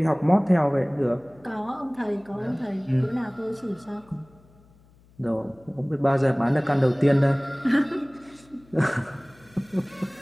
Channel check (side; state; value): left; noise; hum, 29 dB below the sound